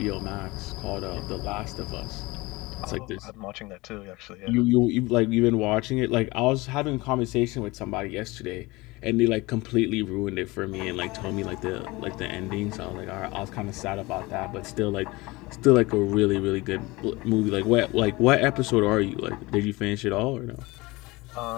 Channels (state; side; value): quieter; right; 22.3 dB